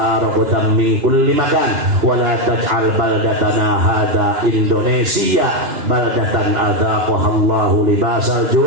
ragadan min kulli makan wa la taj'al baldatana hadza Indonesia baldatan adzaqaha Allahu libasal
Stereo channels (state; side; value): late; left; 2.9 ms